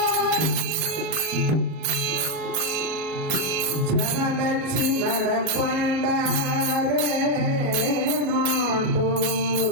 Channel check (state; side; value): late; left; 38 ms